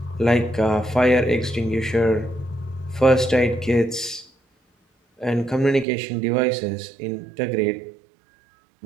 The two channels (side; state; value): left; drops out; at 5.9 s